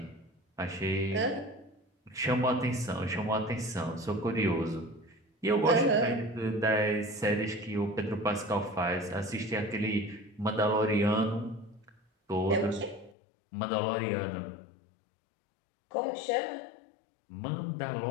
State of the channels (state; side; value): drops out; right; at 13.2 s